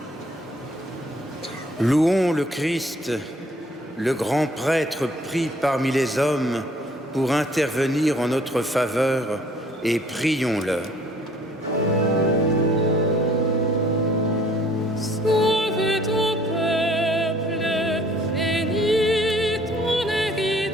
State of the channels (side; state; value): both; normal; correlation 0.58